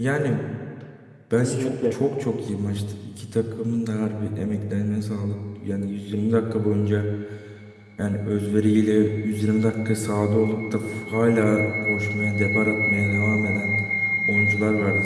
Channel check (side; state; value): both; identical; correlation 1.00